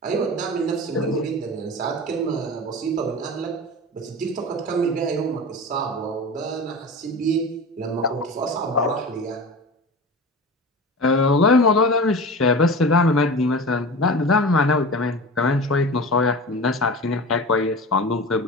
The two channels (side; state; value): both; normal; correlation 0.31